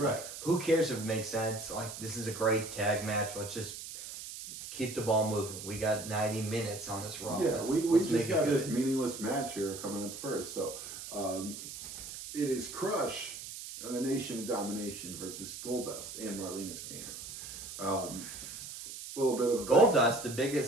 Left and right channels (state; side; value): noise; right; hiss, 10 dB below the sound